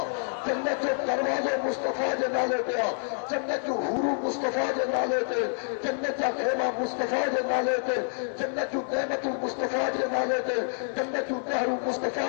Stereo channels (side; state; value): right; silent; 59 dB below the other